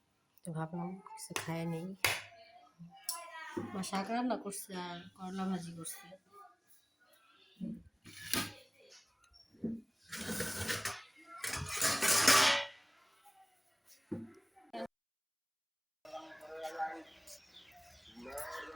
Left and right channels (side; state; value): both; identical; correlation 1.00